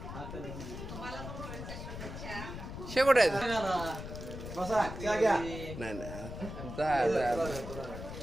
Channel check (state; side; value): noise; left; rumble, 9 dB below the sound